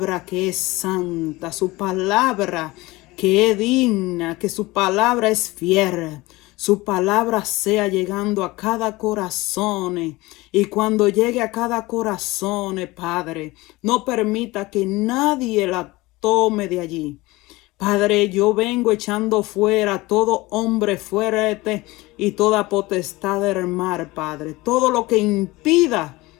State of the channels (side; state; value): right; quieter; 21.0 dB